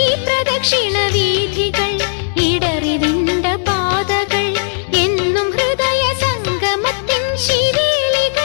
പ്രദക്ഷിണവീഥികൾ ഇടറിവിണ്ട പാതകൾ എന്നും ഹൃദയ സംഗമത്തിൻ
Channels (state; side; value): silent; right; 62 dB below the other